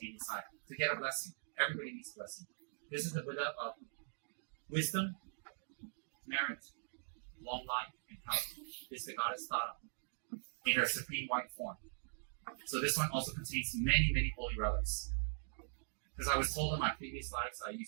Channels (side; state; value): left; silent; digital silence